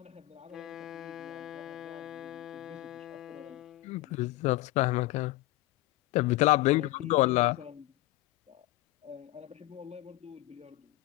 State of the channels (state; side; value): quieter; right; 17.9 dB